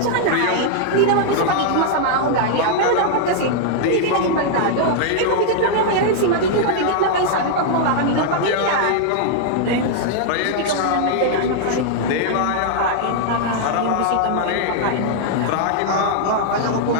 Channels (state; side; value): different; both; correlation -0.01